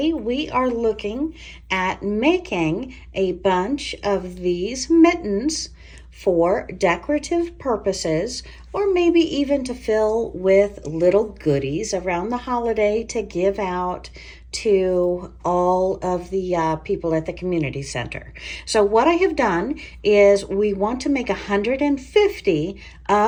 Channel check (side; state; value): both; identical; correlation 1.00